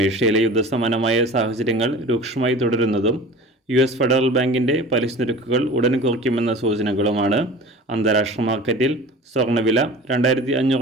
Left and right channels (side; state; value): both; normal; correlation 0.40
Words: യുദ്ധസമാനമായ സാഹചര്യങ്ങൾ രൂക്ഷമായി തുടരുന്നതും US ഫെഡറൽ ബാങ്കിൻ്റെ പലിശ നിരക്കുകൾ ഉടൻ കുറയ്ക്കുമെന്ന സൂചനകളുമാണ് അന്താരാഷ്ട്ര മാർക്കറ്റിൽ സ്വർണ്ണവില